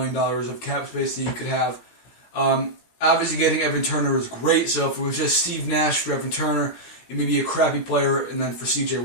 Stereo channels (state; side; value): late; right; 17 ms